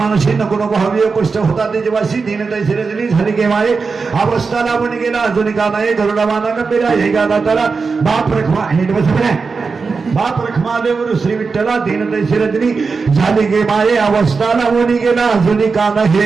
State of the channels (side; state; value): left; quieter; 4.7 dB